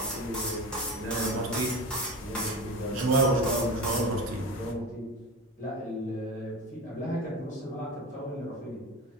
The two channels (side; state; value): both; normal; correlation 0.27